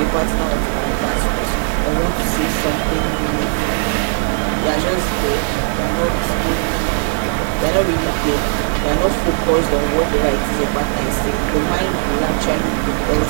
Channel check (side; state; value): left; silent; 62 dB below the other